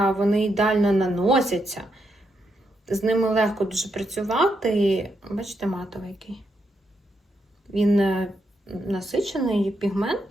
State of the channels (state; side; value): normal; both; correlation 0.81